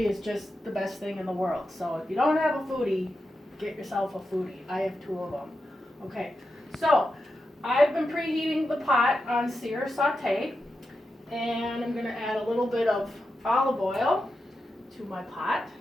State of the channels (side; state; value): both; normal; correlation 0.89